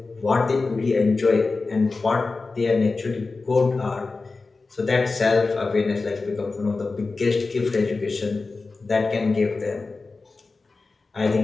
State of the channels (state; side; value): quieter; right; 3.9 dB